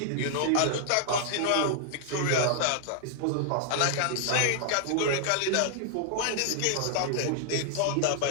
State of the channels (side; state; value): both; different; correlation 0.00